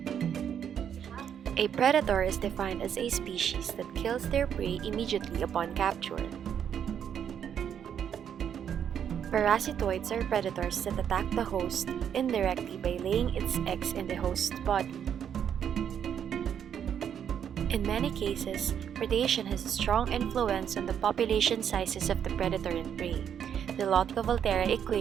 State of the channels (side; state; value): left; quieter; 8.6 dB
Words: A predator is defined as a species that kills their prey immediately upon capture. Parasitoids are predators that attack the host indirectly by laying its eggs in the host's body. In many cases, predation has a strong influence on the population sizes of the predator and prey. The Lotka-Volterra